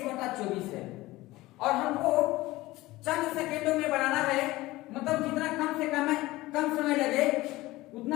है। और हमको चंद सेकेंडों में बनाना है, मतलब जितना कम समय लगे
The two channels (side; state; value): right; quieter; 18.7 dB